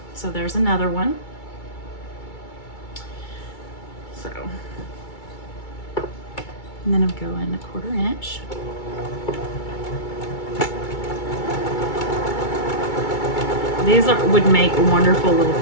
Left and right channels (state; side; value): late; right; 2.3 ms